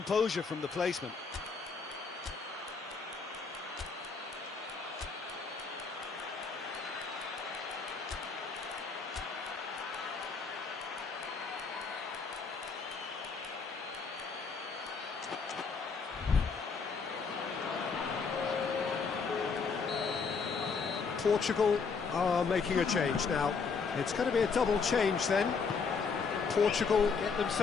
from the placement. Portugal are making a change now. It's going to be a double change then. Portugal get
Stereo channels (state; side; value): quieter; right; 5.2 dB